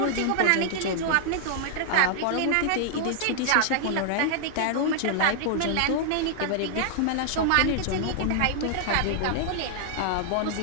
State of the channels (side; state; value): both; different; correlation -0.01